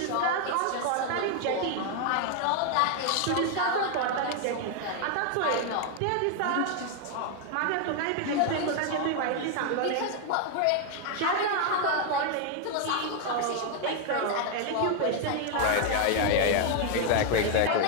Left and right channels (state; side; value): different; both; correlation 0.00